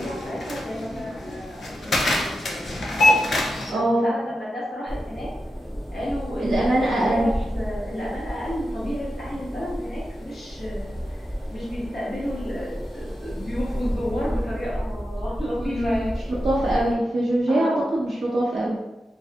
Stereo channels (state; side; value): normal; both; correlation 0.90